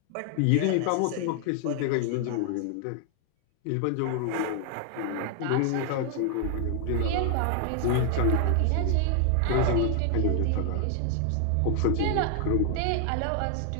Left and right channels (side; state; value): both; different; correlation 0.00